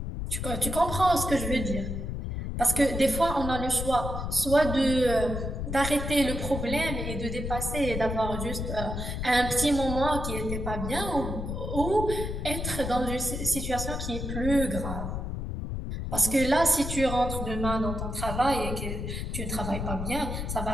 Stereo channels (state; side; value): noise; left; rumble, 4 dB below the sound